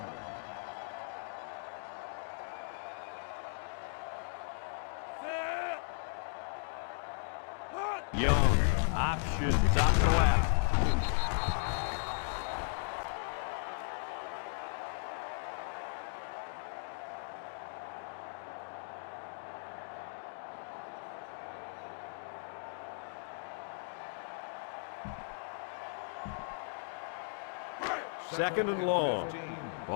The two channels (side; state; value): right; silent; digital silence